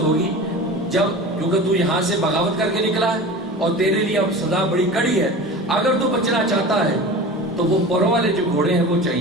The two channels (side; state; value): both; normal; correlation 0.34